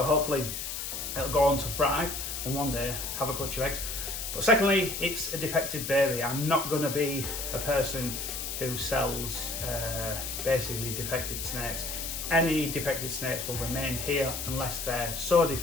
hopefully it'll go on to thrive and one day have a clutch of eggs. But secondly, it's a defected baby. I'm not going to be a person who sells basically defected snakes. Any defected snakes will remain here unless they're so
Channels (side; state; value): left; noise; hiss, 5 dB below the sound